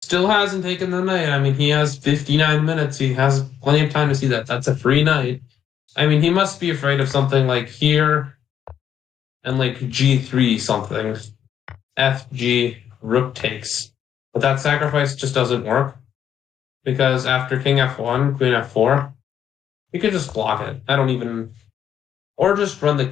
Still hasn't taken the knight. I mean, he has 59 minutes. He has plenty of time to see that. That's a free knight. I mean, he must be afraid of something like here and like g3 something. FG, rook takes. But that sacrifice just doesn't work because after king f1, queen f4, you can just block it. I don't even, or just run the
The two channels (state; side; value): quieter; right; 9.3 dB